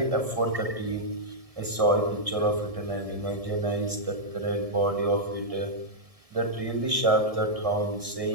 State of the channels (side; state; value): left; late; 1.7 ms